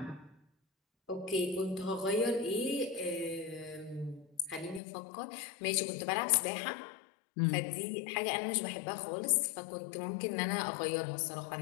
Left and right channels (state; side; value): drops out; right; at 4.8 s